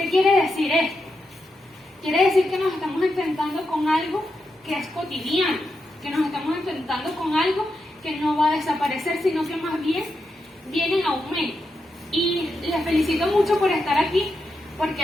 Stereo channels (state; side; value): normal; both; correlation 0.86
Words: quiere decir esto? Quiere decir que nos estamos enfrentando con algo que es cotidiano, que nos estamos enfrentando con algo que no va a desaparecer, sino que más bien viene en aumento. Y les felicito mucho por estar aquí,